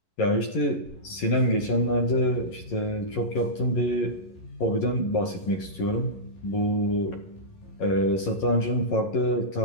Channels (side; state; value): right; late; 11 ms